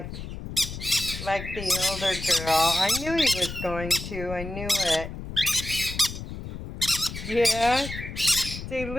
the older girl. I knew he was going to. I knew it. Yeah. Say,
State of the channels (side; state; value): left; noise; rumble, 9 dB below the sound